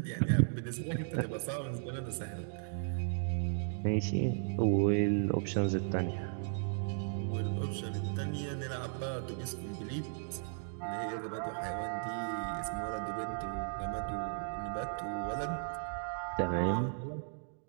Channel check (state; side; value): silent; left; digital silence